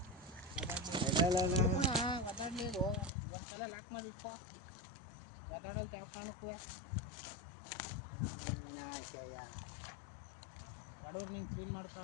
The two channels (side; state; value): right; drops out; at 3.1 s